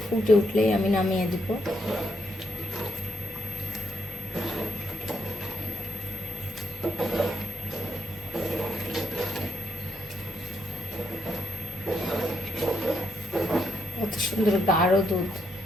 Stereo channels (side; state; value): both; normal; correlation 0.77